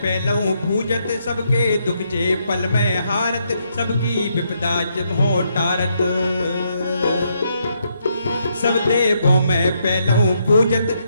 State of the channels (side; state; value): both; inverted; correlation -0.77